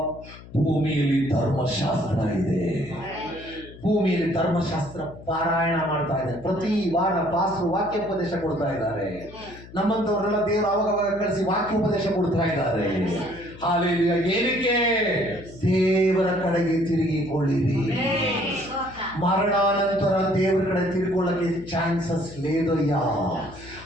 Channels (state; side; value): noise; left; hum, 18 dB below the sound